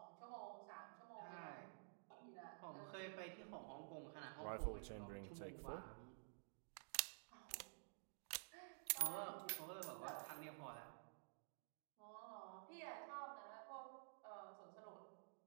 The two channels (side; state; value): left; silent; digital silence